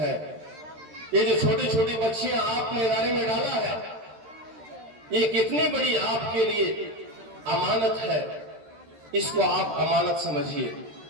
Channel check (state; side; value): late; left; 13 ms